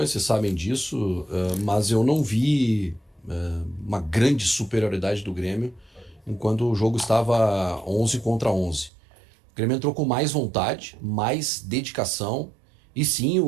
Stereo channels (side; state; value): left; drops out; at 8.9 s